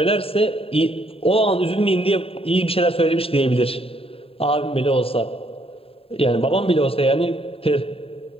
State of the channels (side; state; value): right; late; 0.27 ms